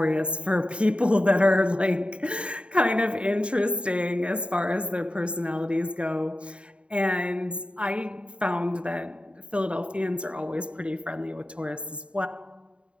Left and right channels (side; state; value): left; late; 0.058 ms